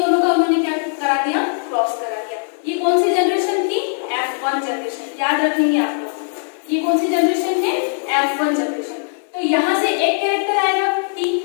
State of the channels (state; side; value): silent; right; digital silence